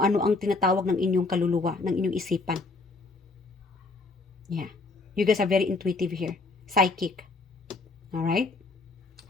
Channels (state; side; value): quieter; right; 3.6 dB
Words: ano ang tinatawag ng inyong kaluluwa, ng inyong isipan. Yeah. You guys are very intuitive here. Psychic. Alright?